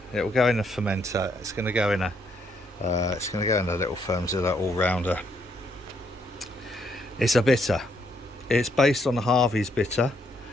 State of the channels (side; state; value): both; normal; correlation 0.73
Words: It will go in a fermenter. It's going to go in a little Firmzilla all-rounder. It's a bitter. It's based on the Harvey's bitter.